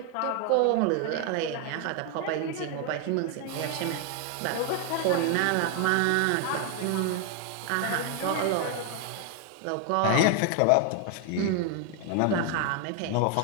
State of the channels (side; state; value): both; different; correlation 0.00